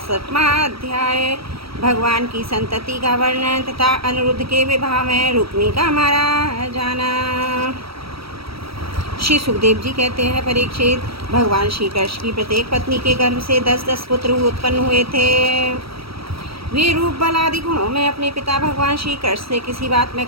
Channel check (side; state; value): left; late; 0.76 ms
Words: अध्याय। भगवान की संतति का वर्णन तथा अनिरुद्ध के विवाह में रुक्मी का मारा जाना। श्री सुखदेव जी कहते हैं, परीक्षित, भगवान श्री कृष्ण की प्रत्येक पत्नी के गर्भ से 10-10 पुत्र उत्पन्न हुए थे। वे रूप बल आदि गुणों में अपने पिता भगवान श्री कृष्ण से किसी बात में